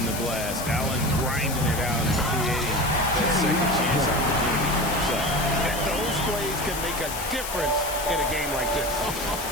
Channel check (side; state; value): left; noise; hiss, 7 dB below the sound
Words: the glass. Allen grinding it out and creating that second chance opportunity for himself. And those plays can make a difference in a game like this.